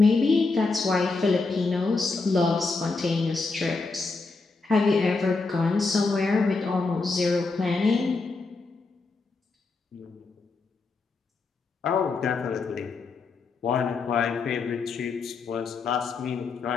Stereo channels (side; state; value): right; quieter; 4.0 dB